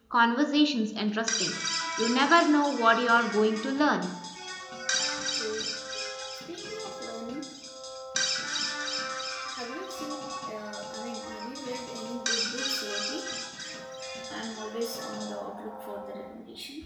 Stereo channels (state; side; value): identical; both; correlation 1.00